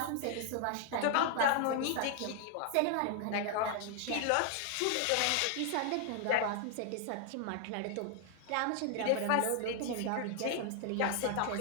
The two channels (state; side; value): different; both; correlation 0.00